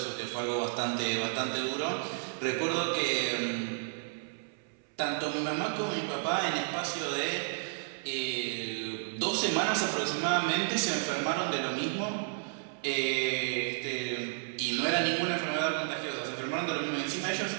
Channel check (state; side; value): silent; left; 56 dB below the other